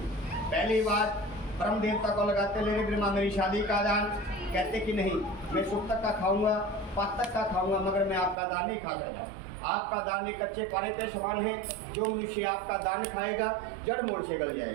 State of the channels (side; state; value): left; drops out; at 8.3 s